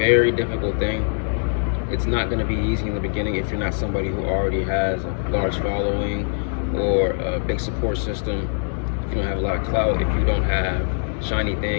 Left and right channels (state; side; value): silent; right; 62 dB below the other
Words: difficult thing. It's not going to be easy in the beginning if you're not somebody who already has a large following or a big support system. If you don't have a lot of clout, if you don't have shiny